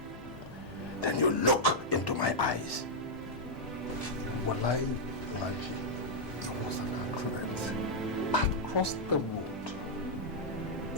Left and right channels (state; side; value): normal; both; correlation -0.06